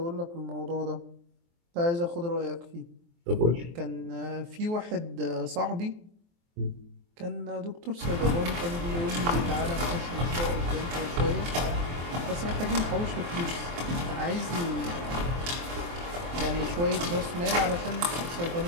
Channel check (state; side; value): late; left; 23 ms